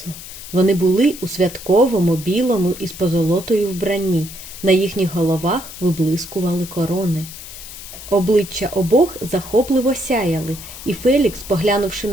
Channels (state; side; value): noise; left; hiss, 13 dB below the sound